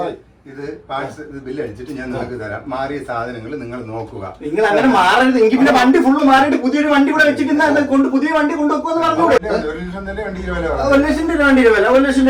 ഇത് പാർട്സ് ഇത് ബില്ല് അടിച്ചിട്ട് ഞാൻ നിങ്ങൾക്ക് തരാം. മാറിയ സാധനങ്ങൾ നിങ്ങൾ നോക്കുക. നിങ്ങൾ അങ്ങനെ മാറരുത്. എങ്കിൽ പിന്നെ വണ്ടി ഫുള്ള് മാറിയിട്ട് പുതിയൊരു വണ്ടി കൂടെ വെച്ചിട്ട് പുതിയ വണ്ടി കൊണ്ടുവെക്കുമെന്ന് പറഞ്ഞൂടെ? 1,00,000 തന്നെ വണ്ടിയുടെ വില. 1,00,000 രൂപ വണ്ടിയുടെ വില. 1,00,000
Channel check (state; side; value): identical; both; correlation 1.00